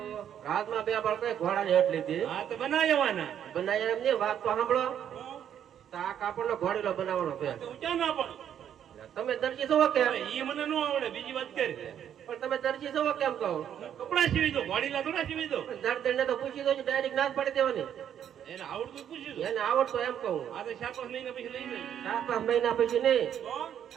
રાતમાં બે બાળકો ઘોડા હેઠ લીધી. હા તો બનાવવાના બનાવ્યા એમ નહીં વાત તો સાંભળો. તો આ કાપડ નો ઘોડીલો બનાવવાનો છે. ઊંચા ના પણ તમે દરજી છો કેમ? એ મને ન આવડે બીજી વાત કરી પણ તમે દરજી છો કેમ કહો? કપડા સીવી દો વાડીલા થોડા સીવી દો દર્દ ને તો પૂછી દો ડાયરેક્ટ ના જ પાડી દેવાની. એને આવડતું પૂછ્યું દો એને આવડતો એમ કહું. આ તો 4-5 મહિના પછી લઈ જાય 4-5 મહિના પછી નહીં તો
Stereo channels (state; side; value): quieter; left; 9.5 dB